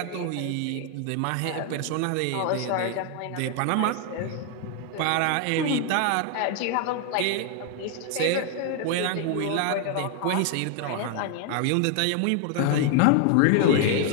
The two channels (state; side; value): different; both; correlation 0.00